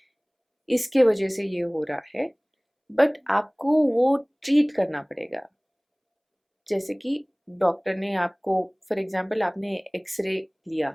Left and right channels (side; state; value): both; identical; correlation 1.00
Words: इसके वजह से ये हो रहा है, बट आपको वो ट्रीट करना पड़ेगा. जैसे कि डॉक्टर ने आपको, फॉर एग्जांपल आपने एक्सरे लिया,